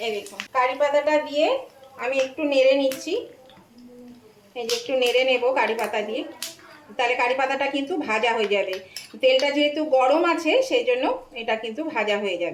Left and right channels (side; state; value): both; identical; correlation 1.00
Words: এই দেখুন কারি পাতাটা দিয়ে আমি একটু নেড়ে নিচ্ছি, এই যে একটু নেড়ে নেব কারি পাতা দিয়ে, তাহলে কারি পাতাটা কিন্তু ভাজা হয়ে যাবে। তেলটা যেহেতু গরম আছে সেই জন্য এটা কিন্তু ভাজা হয়ে